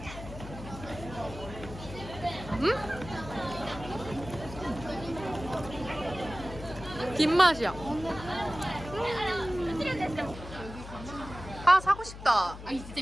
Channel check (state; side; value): noise; left; hum, 12 dB below the sound